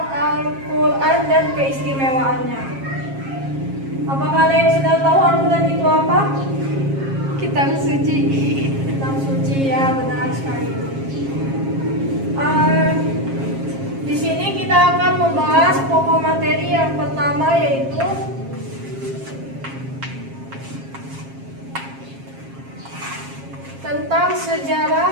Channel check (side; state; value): left; late; 7.4 ms